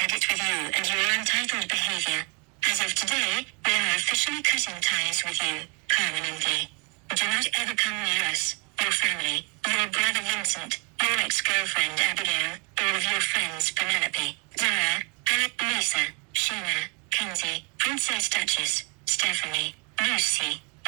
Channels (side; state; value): left; quieter; 33.5 dB